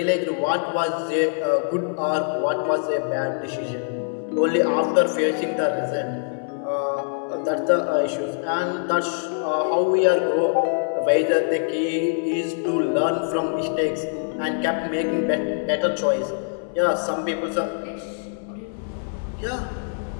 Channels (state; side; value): silent; right; 59 dB below the other